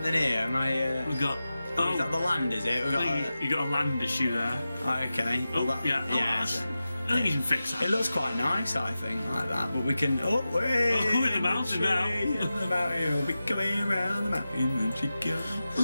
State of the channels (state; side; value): inverted; both; correlation -0.94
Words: here? Am I? We've got. Is that the land? Is it? You got a land issue there. Okay. Yeah. I think you can fix that. It looks quite nice, I think, like that. But we can. We're in the mountain now. The mountain, we'll be coming around the mountain when she goes.